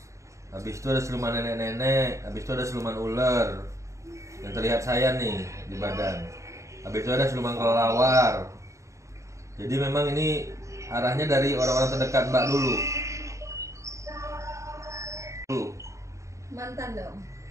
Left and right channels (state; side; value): late; left; 0.15 ms